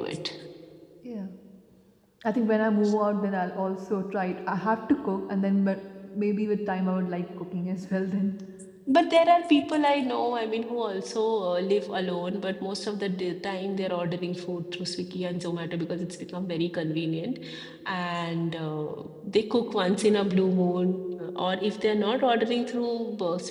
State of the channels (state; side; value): identical; both; correlation 1.00